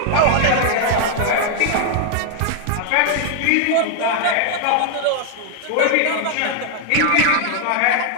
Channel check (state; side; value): different; both; correlation 0.00